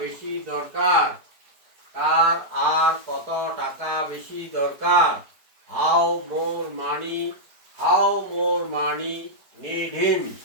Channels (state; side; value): late; left; 4.6 ms